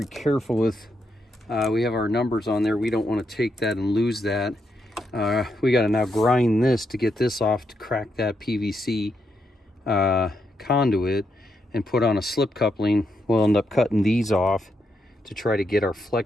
careful with, we have our numbers on there. We don't want to take that and lose that. We got to now grind this to get this off to crack that PVC conduit and put on a slip coupling. We'll end up cutting these off to try to get our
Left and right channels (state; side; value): normal; both; correlation 0.81